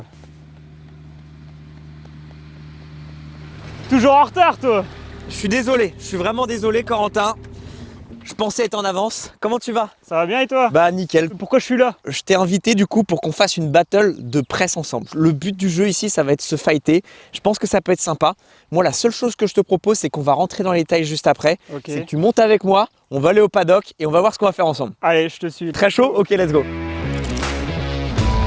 Toujours en retard toi! Je suis désolé, je suis vraiment désolé Corentin. Je pensais être en avance. Comment tu vas? Ça va bien et toi? Bah nickel. Pourquoi je suis là? Je t'ai invité du coup pour qu'on fasse une battle de presse ensemble. Le but du jeu ici, ça va être se fighter. Je pense que ça peut être sympa. Moi, la seule chose que je te propose, c'est qu'on va rentrer dans les détails juste après. Ok. C'est que tu montes avec moi, on va aller au paddock et on va voir ce qu'on va faire ensemble. Allez, je te suis. Très chaud? Ok, let's go.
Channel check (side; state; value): both; identical; correlation 1.00